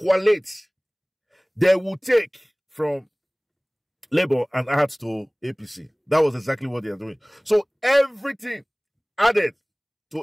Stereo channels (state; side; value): identical; both; correlation 1.00